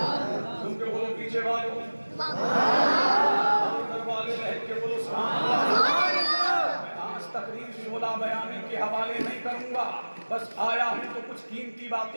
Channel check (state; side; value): inverted; both; correlation -1.00